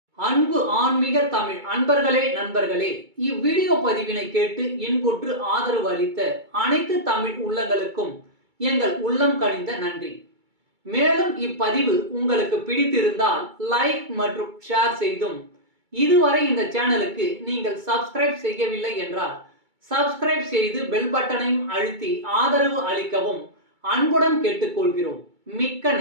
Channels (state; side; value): late; left; 2.3 ms